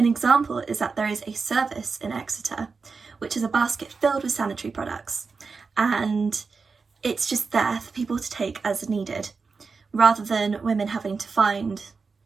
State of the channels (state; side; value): quieter; left; 4.7 dB